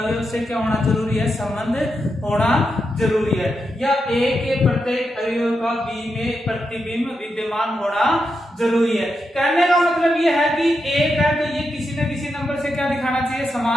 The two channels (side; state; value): both; normal; correlation 0.86